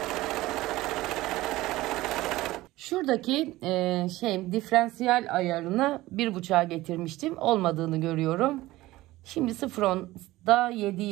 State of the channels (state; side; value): quieter; left; 17.8 dB